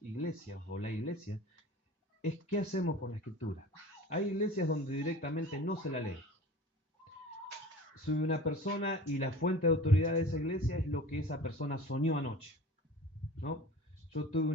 o la iglesia es qué hacemos con la escritura. Hay iglesias donde directamente no se la lee. Soy una persona y la fuente de autoridad de esa iglesia es lo que esa persona soñó anoche, ¿no? Yo tuve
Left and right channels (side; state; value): both; normal; correlation 0.40